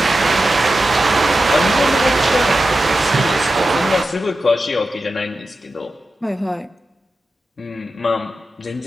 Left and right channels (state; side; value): normal; both; correlation 0.92